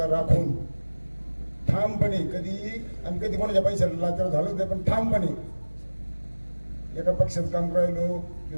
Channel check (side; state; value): both; inverted; correlation -1.00